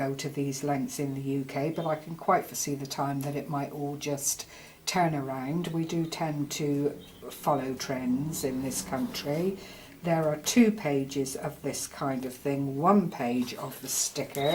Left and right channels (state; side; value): identical; both; correlation 1.00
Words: to these lengths in the UK, but I can quite foresee the time that it might all just turn around. We do tend to follow trends in this country. There are 2 pages of this kind of thing, 1 page of the